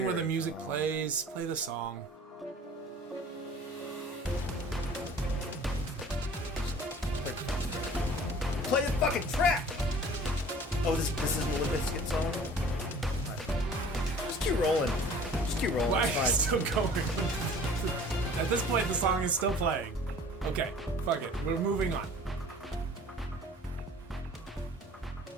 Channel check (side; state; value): both; normal; correlation 0.47